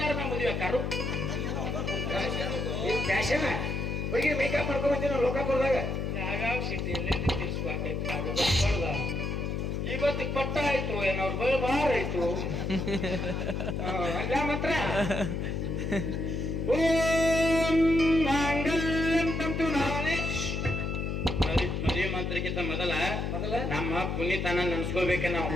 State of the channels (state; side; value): noise; left; hum, 2 dB below the sound